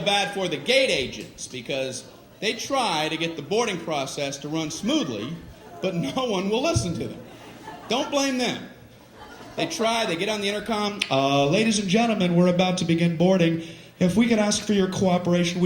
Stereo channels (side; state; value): both; identical; correlation 1.00